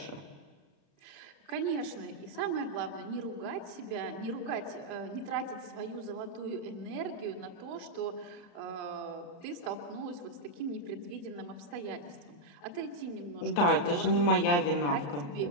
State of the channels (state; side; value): late; right; 34 ms